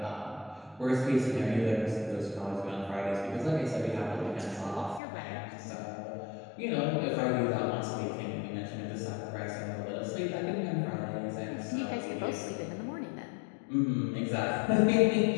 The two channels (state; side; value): drops out; right; at 5.0 s